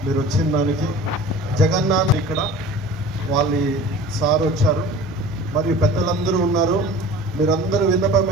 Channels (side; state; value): both; normal; correlation 0.41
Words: మీరు వచ్చిన దానికి. జగన్నాథ్ ఇక్కడ వాళ్ళ సార్ వచ్చారు, మరియు పెద్దలందరూ ఉన్నారు. మీరందరూ విన్నపం